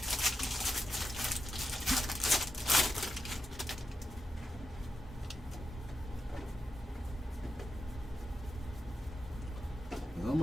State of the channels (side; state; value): both; normal; correlation 0.87